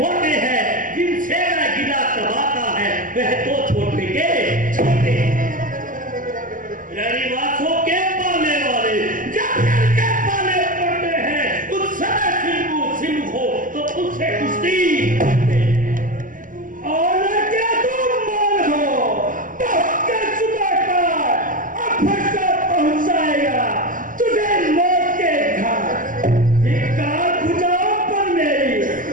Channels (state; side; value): late; left; 0.39 ms